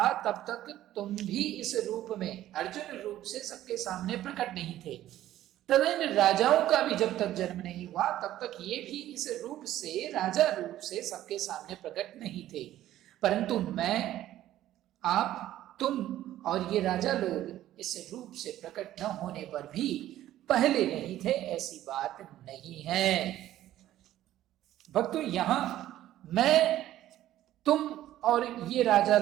तब तक तुम भी इस रूप में, अर्जुन रूप से सबके सामने प्रकट नहीं थे। तथा इन राजाओं का भी जब तक जन्म नहीं हुआ तब तक ये भी इस रूप से, राजा रूप से सबके सामने प्रकट नहीं थे। परंतु मैं, आप, तुम और ये राजा लोग इस रूप से प्रकट न होने पर भी पहले नहीं थे, ऐसी बात नहीं है। भक्तों, यहां मैं, तुम और ये राजा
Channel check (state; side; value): quieter; left; 13.4 dB